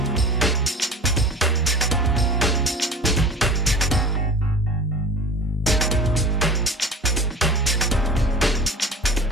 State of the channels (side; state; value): both; normal; correlation 0.39